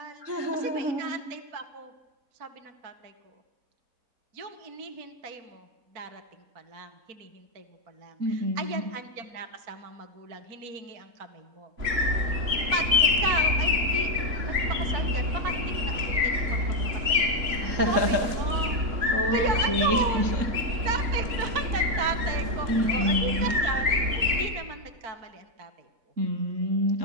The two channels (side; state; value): left; late; 4.4 ms